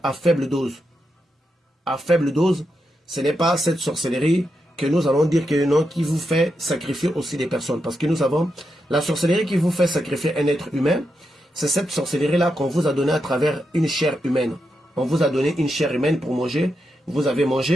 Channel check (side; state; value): both; normal; correlation 0.85